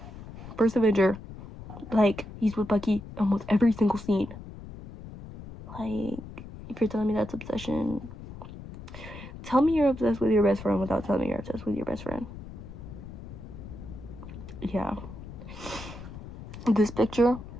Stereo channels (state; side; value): noise; left; rumble, 13 dB below the sound